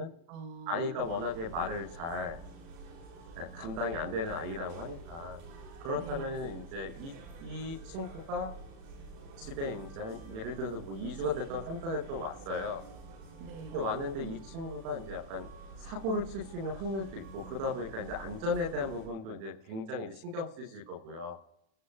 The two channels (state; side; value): late; left; 36 ms